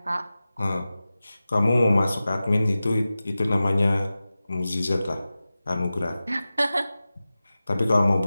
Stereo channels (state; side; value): inverted; both; correlation -0.95